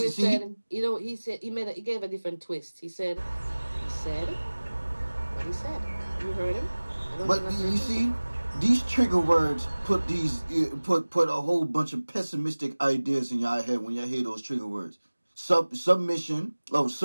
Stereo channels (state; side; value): inverted; both; correlation -1.00